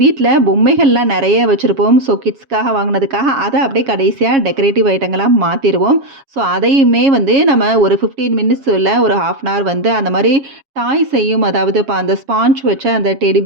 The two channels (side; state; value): left; late; 7.3 ms